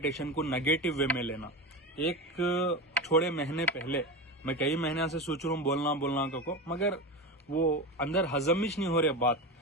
को नेगेटिव वे में लेना। एक थोड़े महीने पहले मैं कई महीने से सोच रहा हूँ बोलना को, मगर वो अंदर हजम ही नहीं हो रही बात।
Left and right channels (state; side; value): normal; both; correlation 0.23